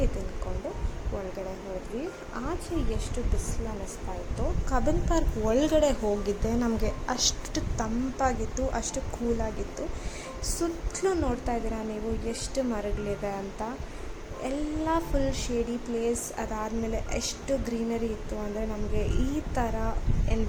ತಿಂದ್ಕೊಂಡು ಒಳಗಡೆ ಹೋದ್ವಿ. ಆಚೆ ಎಷ್ಟು ಬಿಸಿಲು ಅನ್ನಿಸ್ತಾ ಇತ್ತು. ಕಬ್ಬನ್ ಪಾರ್ಕ್ ಒಳಗಡೆ ಹೋಗಿದ್ದೆ ನಮಗೆ ಅಷ್ಟು ತಂಪಾಗಿತ್ತು, ಅಷ್ಟು ಕೂಲಾಗಿತ್ತು. ಸುತ್ತಲೂ ನೋಡ್ತಾ ಇದ್ದೀರಾ ನೀವು ಎಷ್ಟು ಮರಗಳಿದೆ ಅಂತ. ಎಲ್ಲ ಫುಲ್ ಶೇಡಿ ಪ್ಲೇಸ್. ಅದಾದಮೇಲೆ ಎಷ್ಟು ಗ್ರೀನರಿ ಇತ್ತು ಅಂದರೆ ನಮಗೆ ಈ ಥರ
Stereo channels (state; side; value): identical; both; correlation 1.00